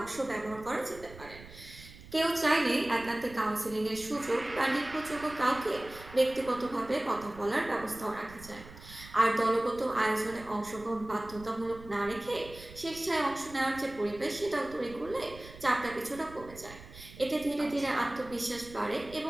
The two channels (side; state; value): right; noise; rumble, 17 dB below the sound